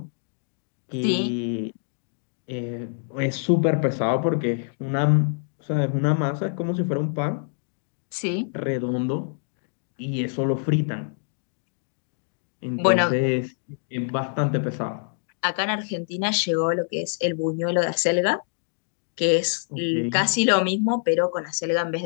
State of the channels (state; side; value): silent; right; digital silence